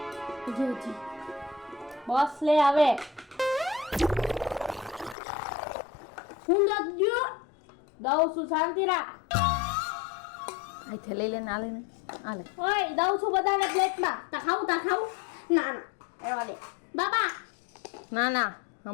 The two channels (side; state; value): right; drops out; at 5.2 s